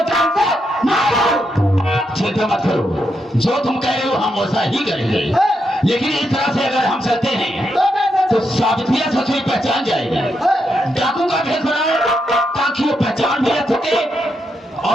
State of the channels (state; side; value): normal; both; correlation 0.82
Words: जान से मारो। चिंता मत करो, जो तुम कह रहे हो हम वैसा ही करेंगे। लेकिन इस तरह से अगर हम चलते हैं तो सावित्रिया ससुरी पहचान जाएगी। डाकू का भेष बनाओ ताकि वो पहचान भी रख सके